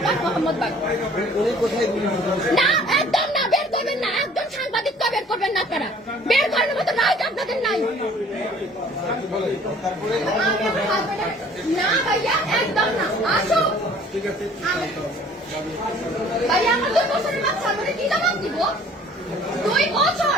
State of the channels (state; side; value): normal; both; correlation 0.53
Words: মোহাম্মদবাগ। উনি কোথায় গুলি করেছেন? না একদম না, বের করবেন না। একদম সাংবাদিক তো বের করবেন না আপনারা। বের করার মতো রাইট আপনাদের নাই। না ভাইয়া একদম না, আসো। ভাইয়া আমার 2 বছরের বাচ্চা, আমাকে কি জবাব দিব? 2 বছর